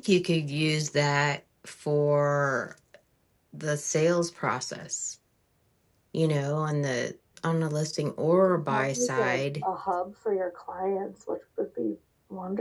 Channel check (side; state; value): both; identical; correlation 1.00